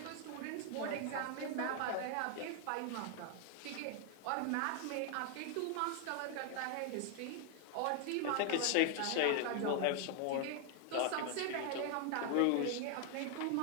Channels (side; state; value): both; different; correlation 0.01